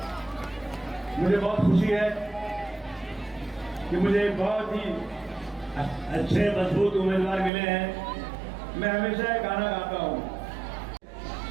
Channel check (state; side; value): drops out; left; at 7.5 s